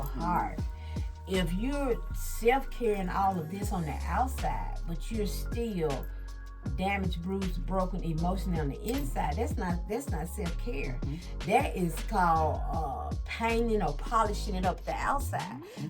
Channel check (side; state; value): both; identical; correlation 1.00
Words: heart. If you're self-caring all of this on the outside, but you're still damaged, bruised, broken emotionally on the inside, that's not self-care. That is called painting or polishing it up the outside.